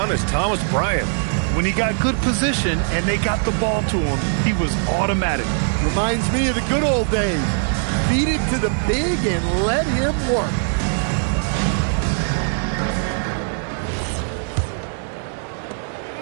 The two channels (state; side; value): silent; left; digital silence